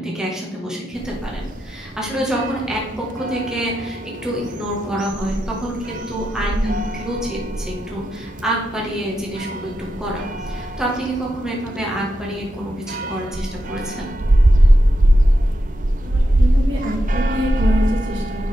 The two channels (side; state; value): both; normal; correlation 0.86